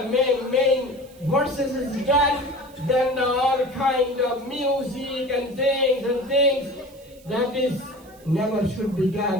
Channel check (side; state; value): right; noise; hiss, 26 dB below the sound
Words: main verses is done. Then all kind of music and things that is never should be